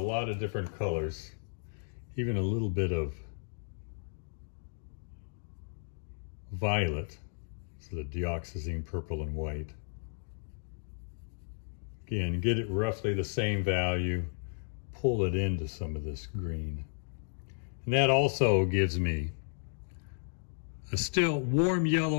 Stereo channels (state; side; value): silent; right; digital silence